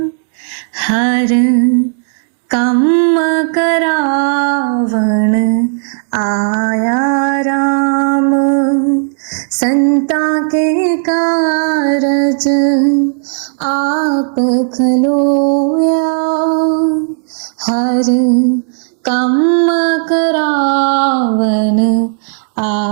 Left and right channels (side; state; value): left; silent; digital silence